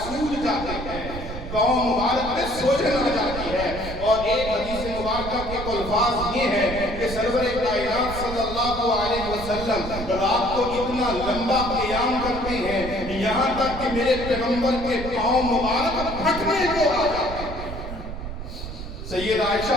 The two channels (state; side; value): noise; right; rumble, 8 dB below the sound